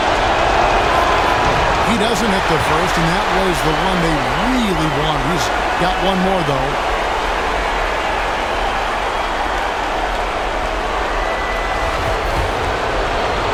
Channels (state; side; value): identical; both; correlation 1.00